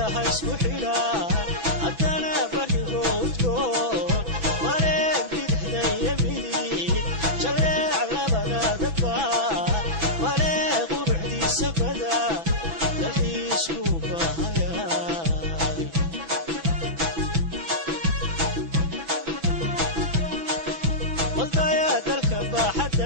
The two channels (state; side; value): late; left; 6.1 ms